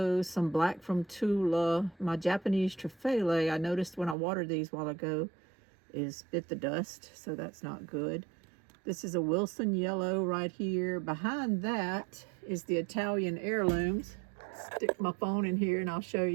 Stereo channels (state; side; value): drops out; left; at 4.2 s